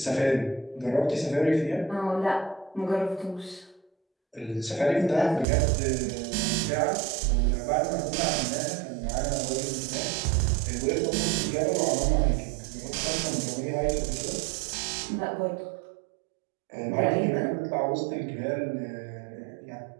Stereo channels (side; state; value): left; drops out; at 5.5 s